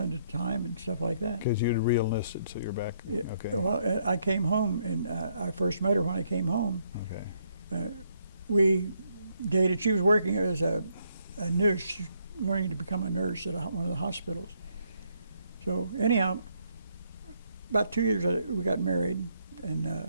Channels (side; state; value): both; inverted; correlation -0.72